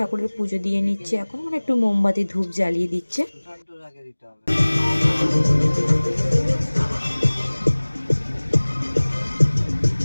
পুজো দিয়ে নিচ্ছে এখন, মানে একটু মোমবাতি ধূপ জ্বালিয়ে দিচ্ছে।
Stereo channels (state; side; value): inverted; both; correlation -1.00